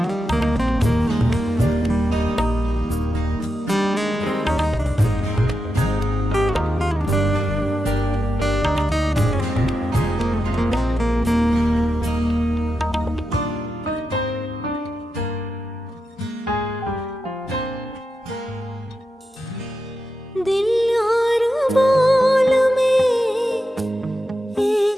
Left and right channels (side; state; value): both; normal; correlation 0.88